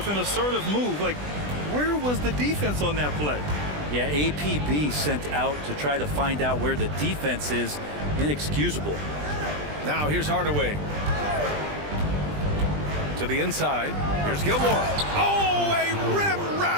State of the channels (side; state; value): left; late; 20 ms